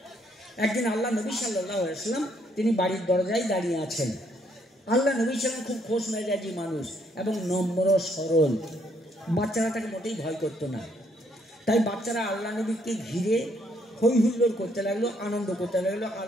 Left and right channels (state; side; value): normal; both; correlation 0.70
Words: একদিন আল্লাহ নবী সাল্লাল্লাহু আলাইহি ওয়াসাল্লাম তিনি বাড়ির দরজায় দাঁড়িয়ে আছেন। আল্লাহ নবী ছিলেন খুব খোশ মেজাজি মানুষ এবং নম্র সরল। বাচ্চারা তাকে মোটেই ভয় করতো না। তাই বাচ্চারা আল্লাহ নবীকে ঘিরে হই হুল্লোড় করতে লাগলো, আনন্দ করতে লাগলো।